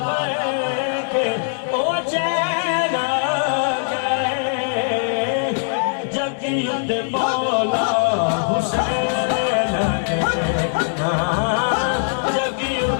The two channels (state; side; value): silent; right; 65 dB below the other